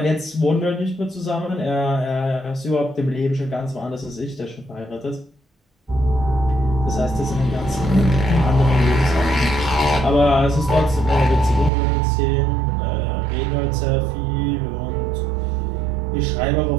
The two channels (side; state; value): left; drops out; at 11.7 s